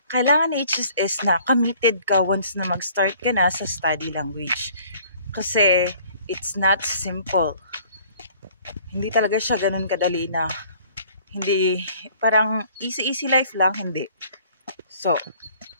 Kailangan ni HSS na committed ka once na mag-start ka na sa study language. Kasi, it's not simple. Hindi talaga siya ganun kadali na, hindi, parang easy life lang, hindi. So,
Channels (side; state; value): both; inverted; correlation -0.55